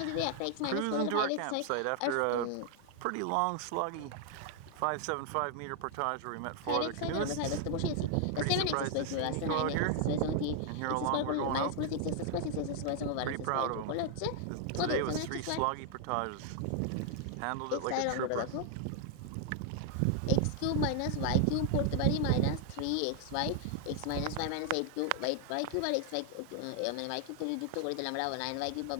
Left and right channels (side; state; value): both; different; correlation 0.00